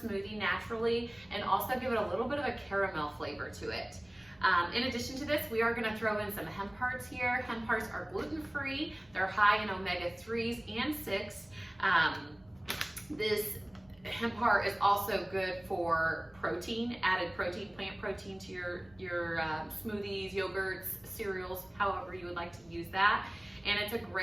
naturally and also give it a little bit of a caramel flavor to it. In addition to this, we are going to throw in some hemp hearts here. Hemp hearts are gluten-free. They're high in omega-3s and 6. This hemp heart is also good for protein, added protein, plant protein to your smoothies, yogurts, cereals, however you would like to use that. And it's a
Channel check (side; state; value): right; noise; rumble, 29 dB below the sound